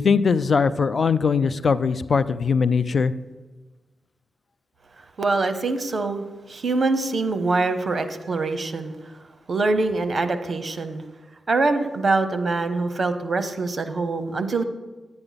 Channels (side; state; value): both; normal; correlation 0.82